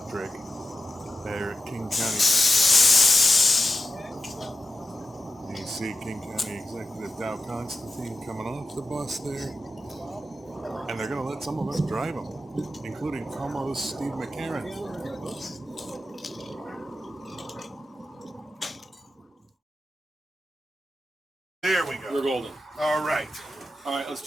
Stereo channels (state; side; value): normal; both; correlation 0.90